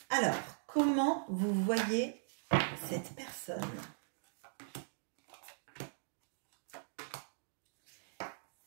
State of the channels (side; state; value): left; silent; digital silence